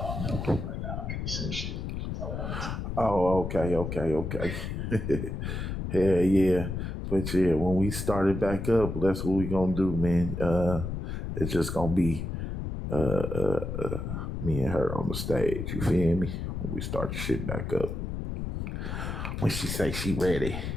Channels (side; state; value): left; noise; rumble, 4 dB below the sound